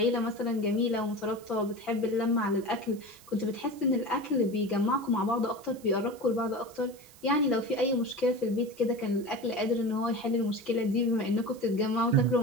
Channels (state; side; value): noise; right; hiss, 24 dB below the sound